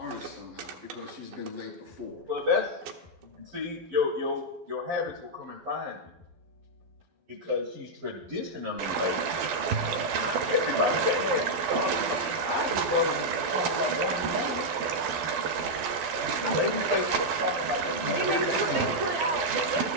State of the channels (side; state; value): left; late; 12 ms